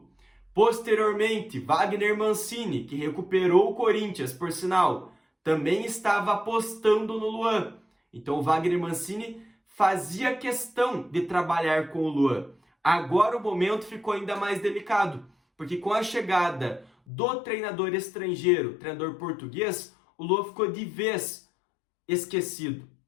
Posteriormente, Wagner Mancini, que recuperou o Corinthians, por sinal, também estava apostando no Luan. Então, o Wagner Mancini fazia questão de trabalhar com o Luan. Agora o momento ficou ainda mais delicado, porque com a chegada do treinador estrangeiro, treinador português, o Luan ficou de vez esquecido.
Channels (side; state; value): right; drops out; at 16.9 s